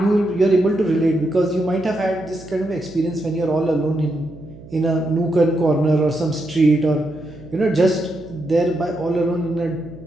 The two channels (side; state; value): right; noise; hum, 19 dB below the sound